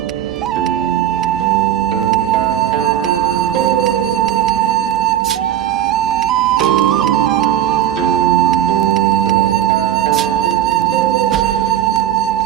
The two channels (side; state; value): left; quieter; 10.9 dB